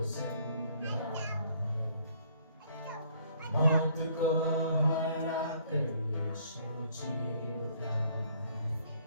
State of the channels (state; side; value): inverted; both; correlation -0.62